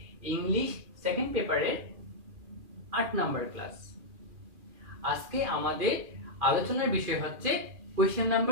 ইংলিশ সেকেন্ড পেপারের 8 নাম্বার ক্লাস। আজকে আমাদের আলোচনার বিষয় হচ্ছে কোয়েশ্চেন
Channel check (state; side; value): late; left; 2.4 ms